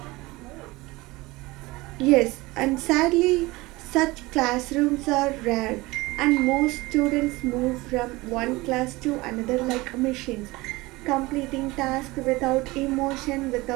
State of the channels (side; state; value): left; quieter; 21.5 dB